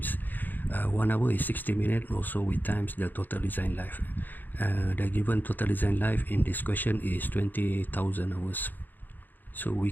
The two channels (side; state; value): right; late; 0.088 ms